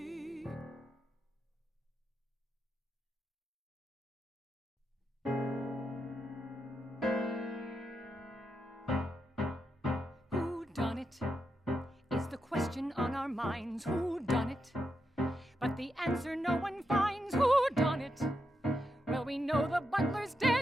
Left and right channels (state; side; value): normal; both; correlation 0.84